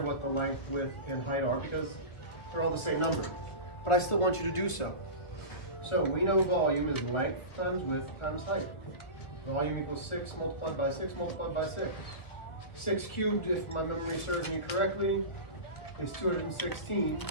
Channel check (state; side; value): late; right; 1.5 ms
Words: what the length, width, and height are because they're all the same number. But I still want you to do so. So we know volume is length times width times height. Volume equals 6 multiplied by 6 multiplied by 6. 6 cubed, if my memory serves me correctly, is 216.